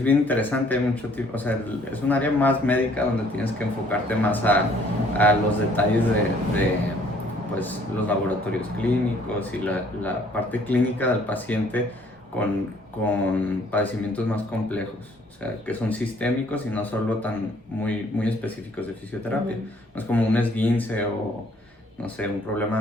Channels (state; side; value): normal; both; correlation 0.60